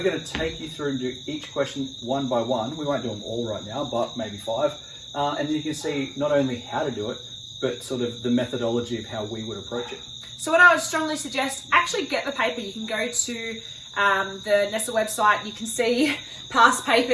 going to take you through and do each question one by one. We won't do them all right now, but maybe 5. And then you can see not only how to do it, but sort of the methodology of how we would approach it. So what I would strongly suggest, actually get the paper. You can go to the Nestle website, you can see past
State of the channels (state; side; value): identical; both; correlation 1.00